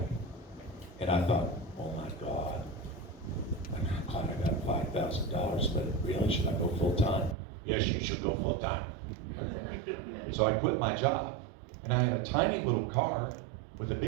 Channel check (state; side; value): drops out; left; at 7.4 s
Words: And I thought, oh my God, I'm glad I got $5,000, but really, should I go full time? Yes, you should go full time. So I quit my job. And I had a tiny little car with a